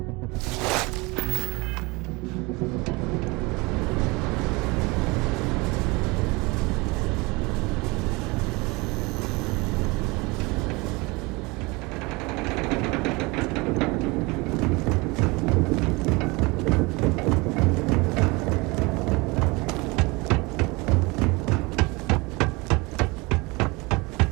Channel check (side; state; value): left; quieter; 25.1 dB